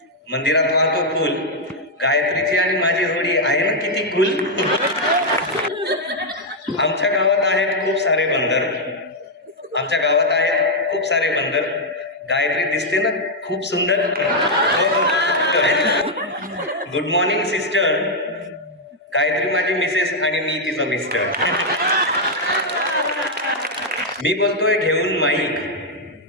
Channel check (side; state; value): both; normal; correlation -0.02